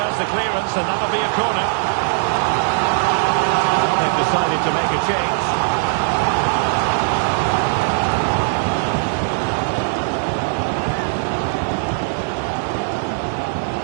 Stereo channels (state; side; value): silent; left; 66 dB below the other